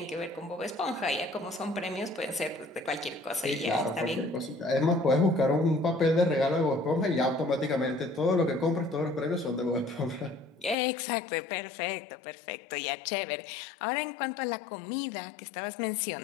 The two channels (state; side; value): drops out; right; at 10.8 s